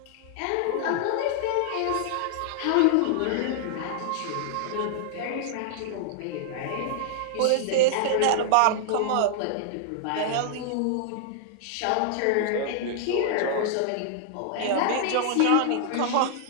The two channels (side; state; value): both; different; correlation -0.01